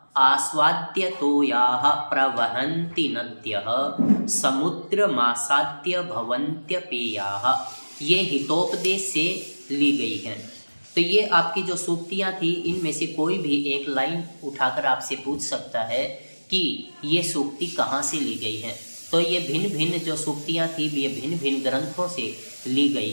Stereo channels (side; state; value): both; inverted; correlation -1.00